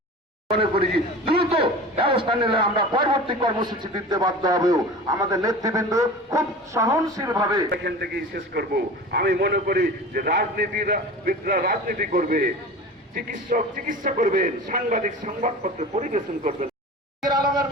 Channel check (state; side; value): normal; both; correlation 0.35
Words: মনে করি দ্রুত ব্যবস্থা নিলে আমরা পরবর্তী কর্মসূচি দিতে বাধ্য হবেও। আমাদের নেতৃবৃন্দ খুব সহনশীল ভাবে এখান থেকেই শেষ করব। আমি মনে করি যে রাজনীতিবিদরা রাজনীতি করবে, চিকিৎসক চিকিৎসা করবেন, সাংবাদিক সংবাদপত্র পরিবেশন করবেন। আলমের